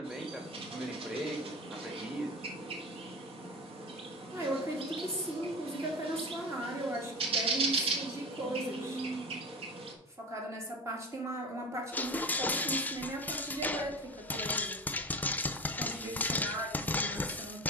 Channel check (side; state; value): both; normal; correlation 0.29